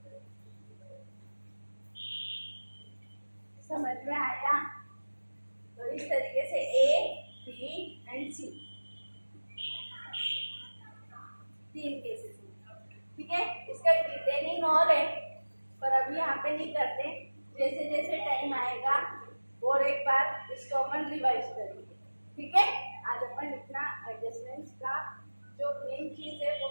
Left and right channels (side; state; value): both; inverted; correlation -1.00